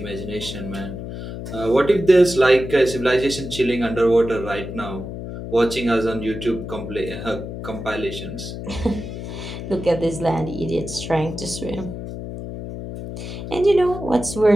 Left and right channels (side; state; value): left; noise; hum, 8 dB below the sound